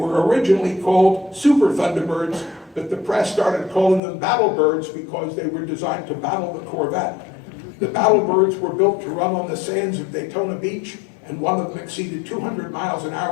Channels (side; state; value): right; drops out; at 4.0 s